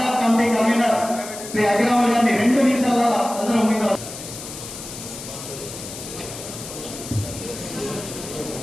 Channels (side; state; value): left; noise; hiss, 11 dB below the sound